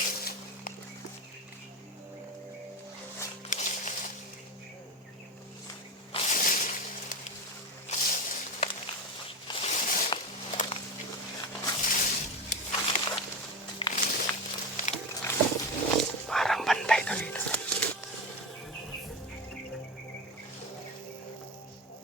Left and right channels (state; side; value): normal; both; correlation 0.21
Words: Parang bantay to dito.